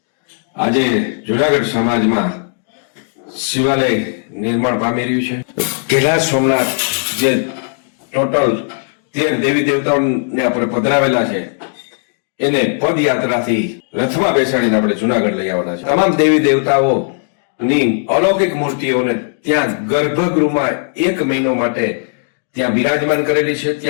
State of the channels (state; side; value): silent; right; digital silence